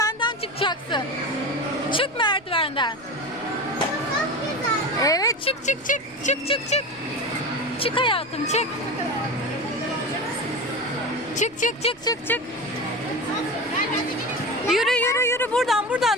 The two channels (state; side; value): noise; left; rumble, 29 dB below the sound